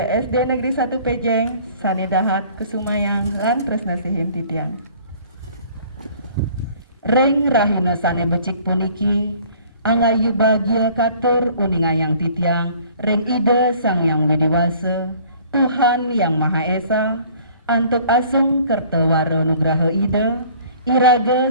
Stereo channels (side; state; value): both; inverted; correlation -0.53